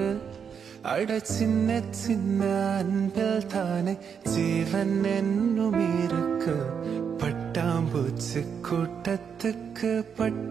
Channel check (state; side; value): quieter; left; 7.0 dB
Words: அட சின்ன சின்ன அன்பில் தானே ஜீவன் என்னும் இருக்கு. பட்டாம்பூச்சி கூட்டத்துக்கு